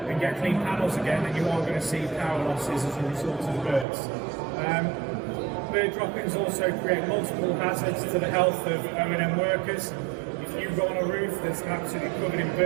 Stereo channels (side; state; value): left; drops out; at 3.9 s